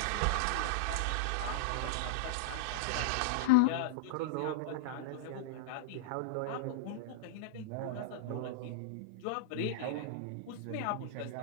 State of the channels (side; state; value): both; different; correlation -0.02